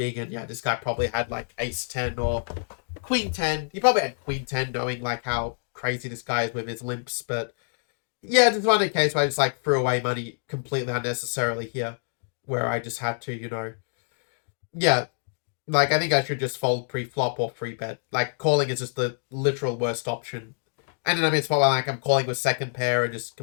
and yeah, this guy probably had like ace-10 or queen-10. He probably had queen-10, knowing like how crazy this guy is with his limps. But yeah, this one case where I just like threw away money completely unnecessarily here, where I just had to, yeah, like I think I should just fold pre-flop or free bet. Like calling is just the literal worst option. And then I mean, it's probably like I'm calling with second pair and just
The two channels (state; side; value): silent; right; digital silence